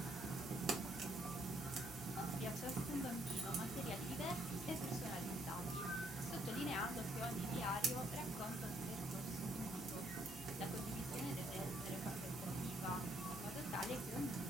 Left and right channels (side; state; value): both; normal; correlation 0.69